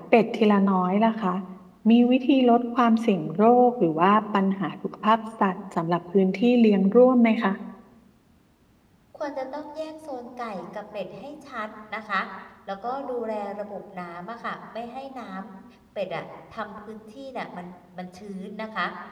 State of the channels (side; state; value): both; identical; correlation 1.00